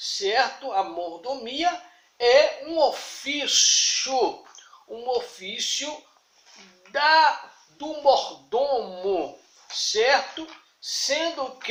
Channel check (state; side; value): identical; both; correlation 1.00